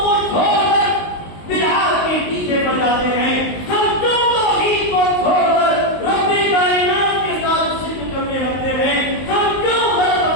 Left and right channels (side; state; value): right; late; 19 ms